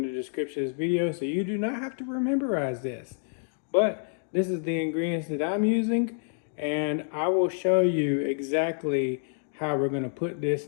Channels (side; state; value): right; silent; digital silence